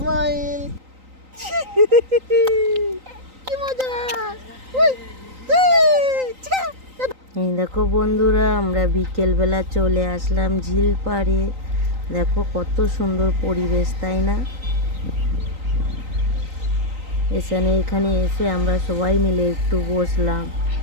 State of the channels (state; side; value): late; left; 3.9 ms